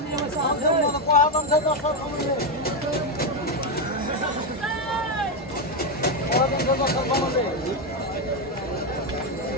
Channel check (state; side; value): normal; both; correlation 0.07